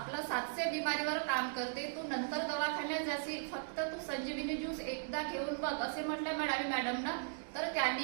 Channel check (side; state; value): left; silent; digital silence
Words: 700 बिमारीवर काम करते. तू नंतर दवाखान्यात जाशील, फक्त तू संजीवनी ज्यूस एकदा घेऊन बघ, असे म्हटले मडावी मॅडमनं. तर